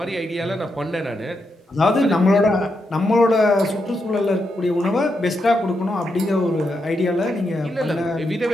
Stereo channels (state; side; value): normal; both; correlation 0.83